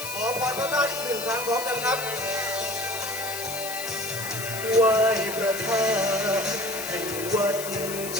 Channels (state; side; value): noise; left; hiss, 7 dB below the sound